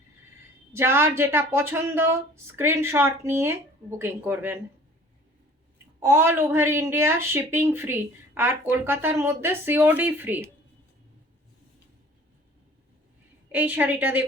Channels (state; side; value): normal; both; correlation 0.49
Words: যার যেটা পছন্দ স্ক্রিনশট নিয়ে বুকিং করবেন। All over India shipping free, আর কলকাতার মধ্যে সিওডি ফ্রি। এই শাড়িটা